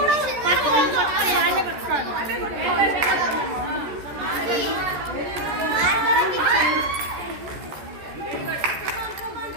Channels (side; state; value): left; late; 14 ms